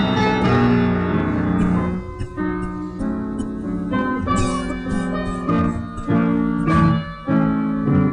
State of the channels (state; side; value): identical; both; correlation 1.00